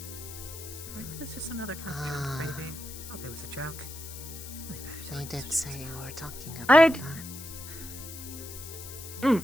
It's just another kind of joke, baby. Hope it was a joke. They did say you were talking about that.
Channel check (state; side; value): noise; left; hiss, 12 dB below the sound